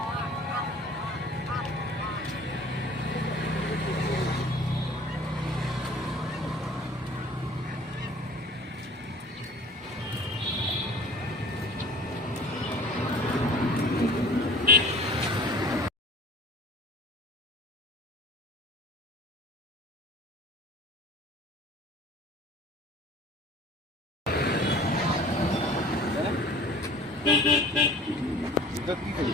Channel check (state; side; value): normal; both; correlation 0.46